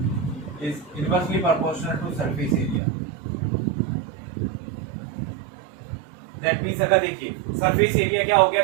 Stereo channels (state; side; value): drops out; left; at 2.8 s